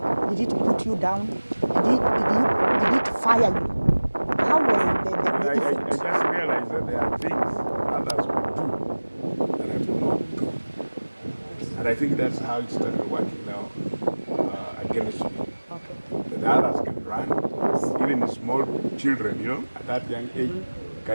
Did it put you down? Did it fire you? How was the I effect? just realized that there are things others could do that I could not do. And I think that's how it started working now against me. Okay. That others can run, even small children, at that young age,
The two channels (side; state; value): both; inverted; correlation -1.00